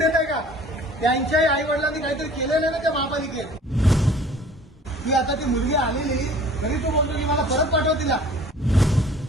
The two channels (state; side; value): normal; both; correlation 0.49